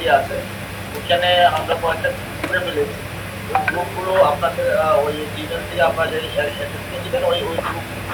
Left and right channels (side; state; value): both; identical; correlation 1.00